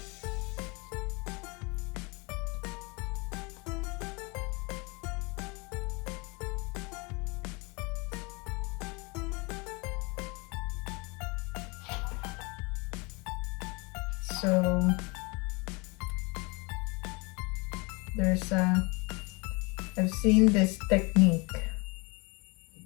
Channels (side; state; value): right; quieter; 28.4 dB